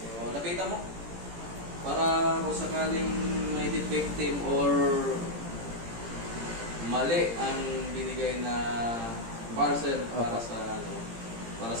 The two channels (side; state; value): left; late; 17 ms